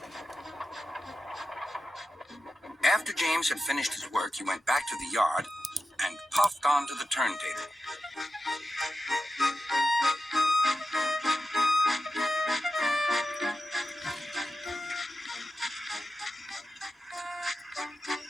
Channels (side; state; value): both; normal; correlation 0.92